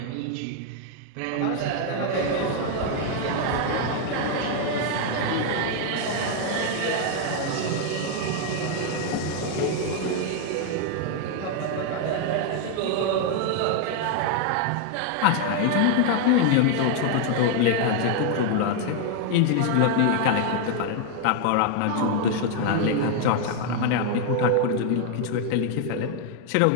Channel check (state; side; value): different; both; correlation 0.00